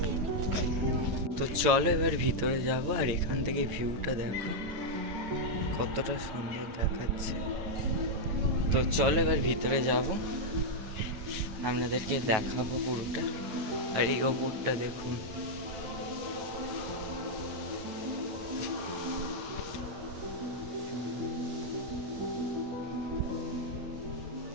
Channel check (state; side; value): late; left; 9.2 ms